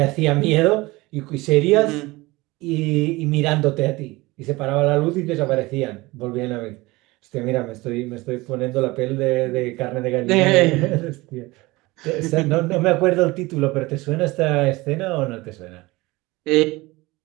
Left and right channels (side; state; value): left; quieter; 21.4 dB